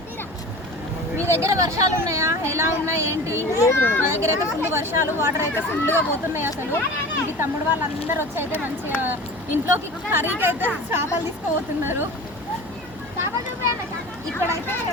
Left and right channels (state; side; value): noise; right; hum, 23 dB below the sound